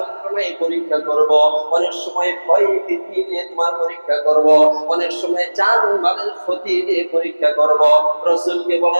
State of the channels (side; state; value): both; inverted; correlation -1.00